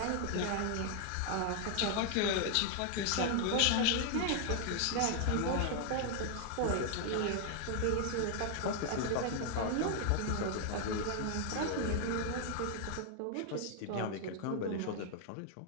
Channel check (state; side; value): different; both; correlation 0.00